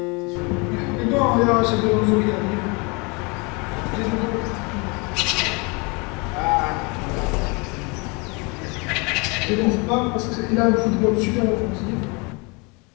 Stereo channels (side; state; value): right; quieter; 29.6 dB